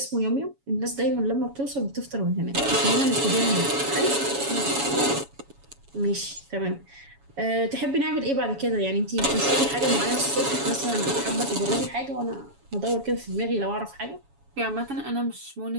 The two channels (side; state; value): left; late; 7.2 ms